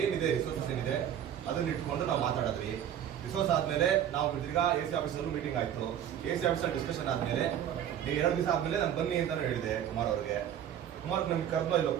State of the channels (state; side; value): quieter; left; 10.0 dB